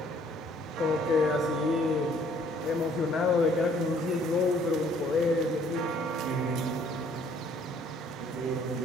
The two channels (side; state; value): both; normal; correlation 0.61